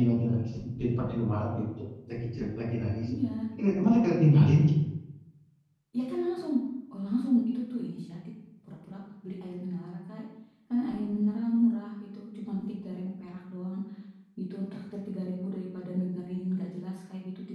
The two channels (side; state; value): both; identical; correlation 1.00